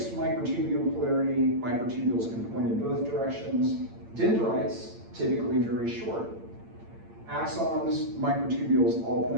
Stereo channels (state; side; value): late; left; 8.8 ms